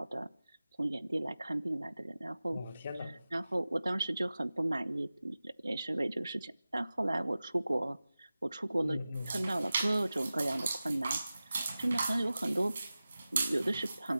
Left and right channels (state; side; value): inverted; both; correlation -0.96